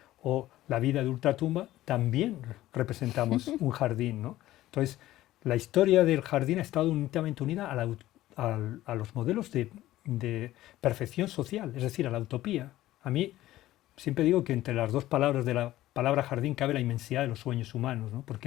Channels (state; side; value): quieter; right; 15.2 dB